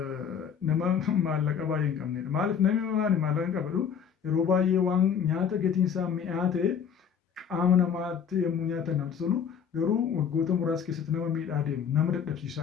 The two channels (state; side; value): quieter; right; 7.5 dB